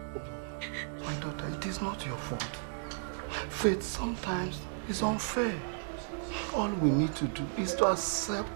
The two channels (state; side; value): silent; left; digital silence